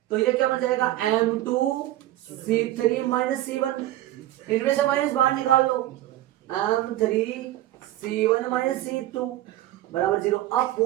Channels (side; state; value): left; quieter; 14.8 dB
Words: तो ये क्या बन जाएगा? M2 C3 minus C1। इनमें से माइनस बाहर निकाल लो, m3 c1 माइनस c2 बराबर 0। अब